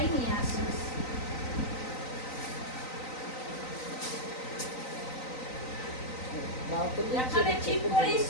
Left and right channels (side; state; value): right; late; 3.9 ms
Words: নিয়ে আসিস। এখানে ঠিক করিস,